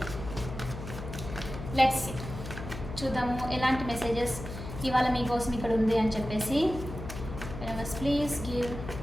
Let's చూద్దాము ఎలాంటి మెసేజెస్ ఇవాళ మీకోసం ఇక్కడ ఉంది అని చెప్పేసి. Please give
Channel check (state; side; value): noise; left; hum, 9 dB below the sound